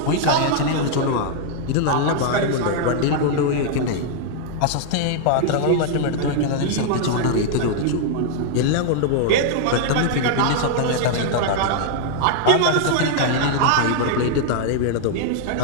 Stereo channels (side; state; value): both; different; correlation 0.00